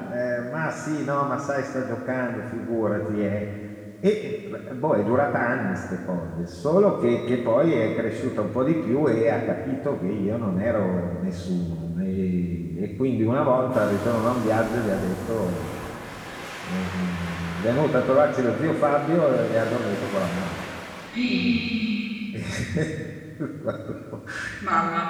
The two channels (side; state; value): both; identical; correlation 1.00